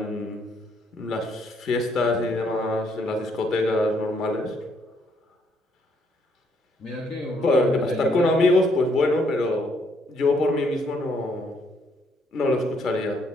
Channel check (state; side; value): normal; both; correlation 0.71